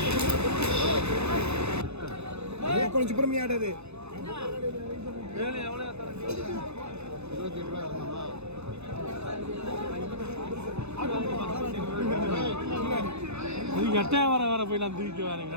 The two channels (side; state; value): left; late; 0.80 ms